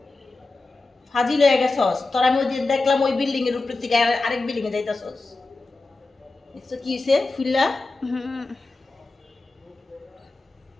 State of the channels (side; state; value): right; quieter; 3.4 dB